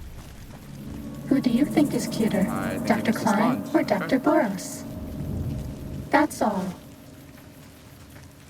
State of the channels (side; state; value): both; identical; correlation 1.00